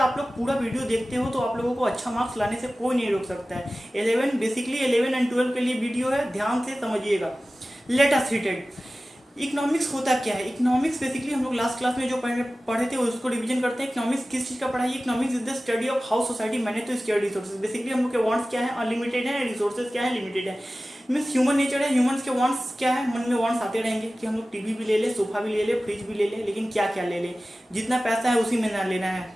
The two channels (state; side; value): normal; both; correlation 0.96